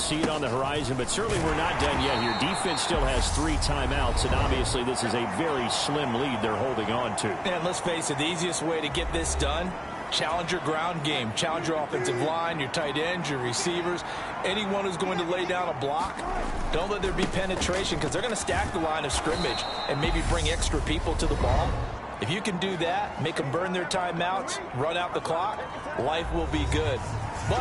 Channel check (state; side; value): identical; both; correlation 1.00